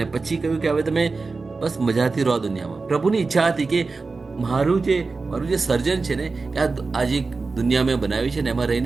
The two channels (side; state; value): left; quieter; 4.0 dB